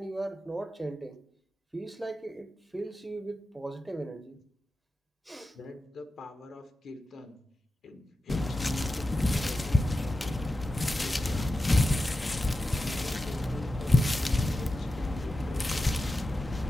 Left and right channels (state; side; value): normal; both; correlation 0.92